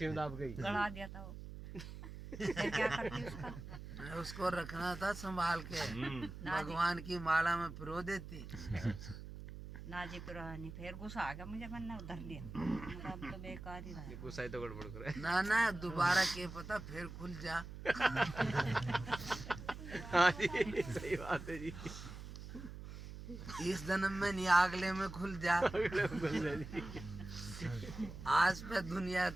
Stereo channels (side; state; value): right; noise; hum, 11 dB below the sound